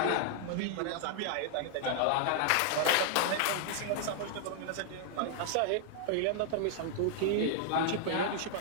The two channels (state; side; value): different; both; correlation 0.00